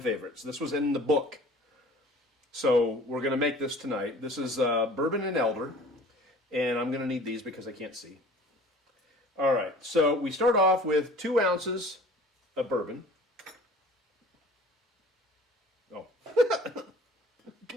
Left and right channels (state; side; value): normal; both; correlation 0.47